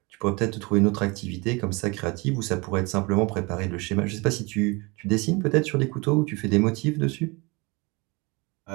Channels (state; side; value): quieter; left; 26.8 dB